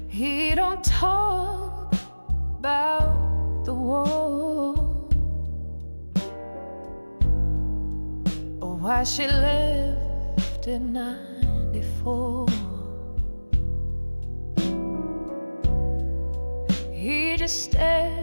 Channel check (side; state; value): both; inverted; correlation -1.00